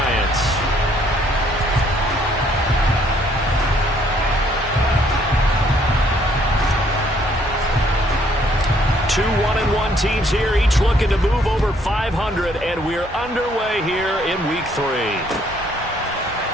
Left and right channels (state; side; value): normal; both; correlation 0.65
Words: Two 1-1 teams here, each looking to move over 500, and we're underway here in week 3.